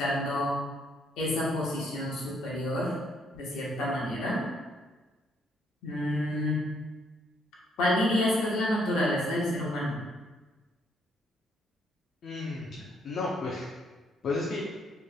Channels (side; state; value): both; normal; correlation 0.70